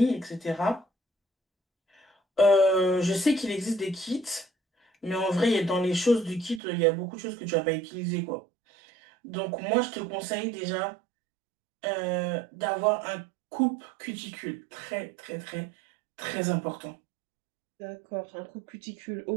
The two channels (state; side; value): drops out; left; at 6.6 s